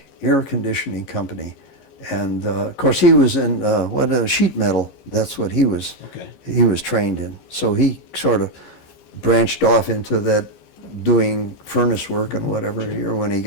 Air Conditioning Company. And of course, he was in sheet metal. That's what he was. Okay. He was trained in. So he sort of branched off into that, doing furnace work and whatever here when he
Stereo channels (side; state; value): right; late; 15 ms